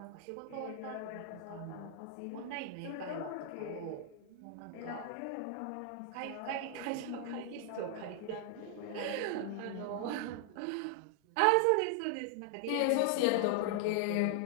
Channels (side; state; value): both; different; correlation 0.00